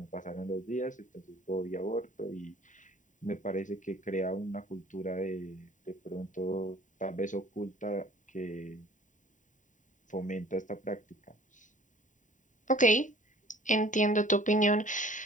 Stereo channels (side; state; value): right; late; 0.37 ms